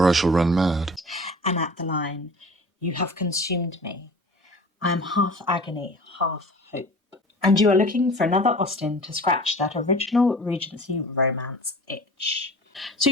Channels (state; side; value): normal; both; correlation 0.41